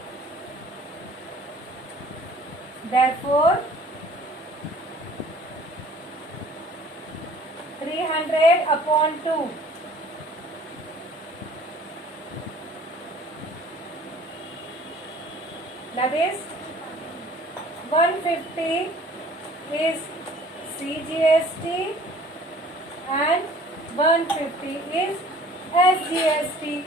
Therefore, 300 upon 2. That is 150 is CGST and 150 is SGST.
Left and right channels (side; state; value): both; normal; correlation 0.51